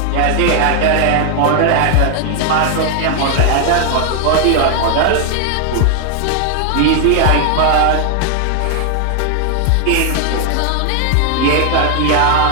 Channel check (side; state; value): both; different; correlation 0.00